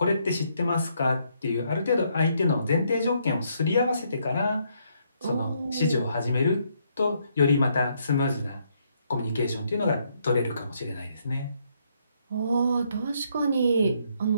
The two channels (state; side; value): inverted; both; correlation -0.73